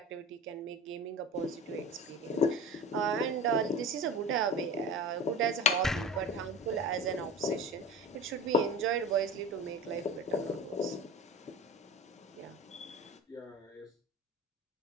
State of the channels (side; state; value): both; normal; correlation 0.34